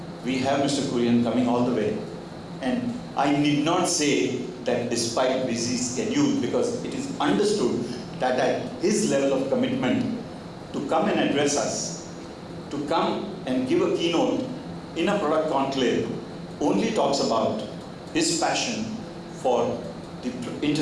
we have Mr. Kurian coming all the way. And I need not say that despite busy schedule, because it is understood that at his level of commitment to come and address us, to come and give a keynote in a product conclave, only talks about his passion for the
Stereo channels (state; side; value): identical; both; correlation 1.00